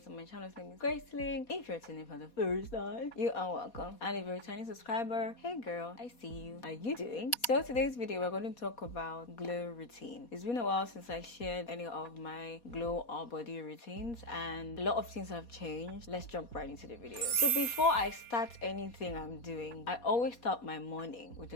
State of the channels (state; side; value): late; right; 4.2 ms